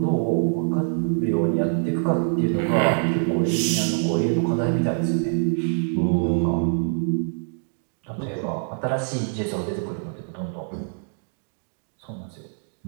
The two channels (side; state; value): left; silent; digital silence